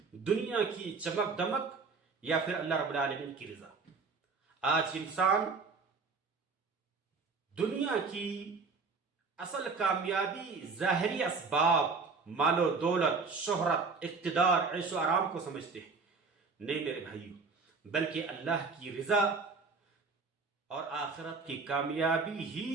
دنیا کی چمک دمک یا پھر اللہ رب العالمین کی رضا؟ آج انسان دنیا کی اصل کامیابی ظاہری اسباب، مال و دولت، شہرت، اقتدار، عیش و آرام کو سمجھتے ہیں۔ نہیں میرے بھائیو، بلکہ اللہ کی رضا اور آخرت کی کامیابی ہی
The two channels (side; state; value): left; quieter; 4.5 dB